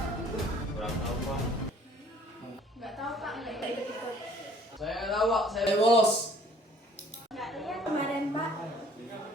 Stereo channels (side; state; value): both; normal; correlation 0.55